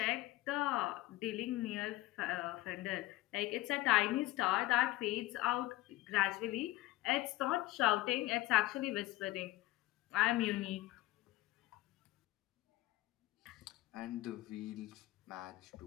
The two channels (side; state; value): right; quieter; 17.9 dB